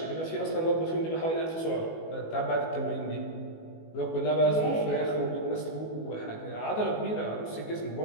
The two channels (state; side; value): late; right; 19 ms